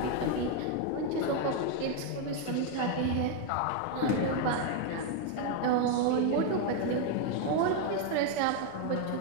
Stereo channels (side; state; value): both; different; correlation 0.01